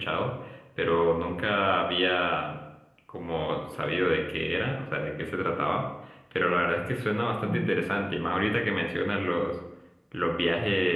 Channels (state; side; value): identical; both; correlation 1.00